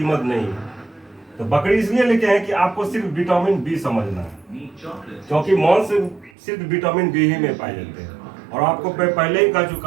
नहीं है। तो बकरी इसलिए लेके हैं कि आपको सिर्फ विटामिन बी समझना है, क्योंकि मांस सिर्फ विटामिन बी ही में पाए जाते हैं। और आपको मैं पहले ही कह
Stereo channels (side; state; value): left; drops out; at 6.3 s